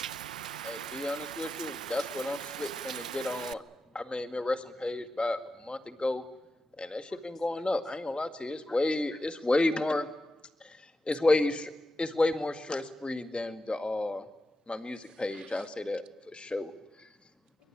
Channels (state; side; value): normal; both; correlation 0.90